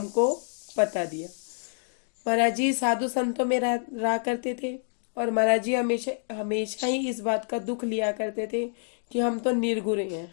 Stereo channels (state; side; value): silent; right; digital silence